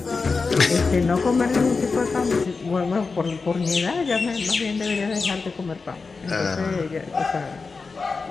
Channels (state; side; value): quieter; right; 4.4 dB